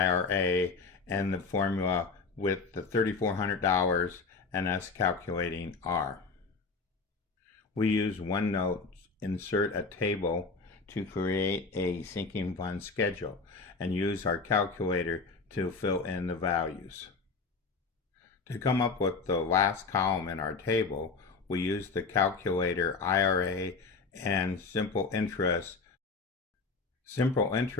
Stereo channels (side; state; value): right; quieter; 4.5 dB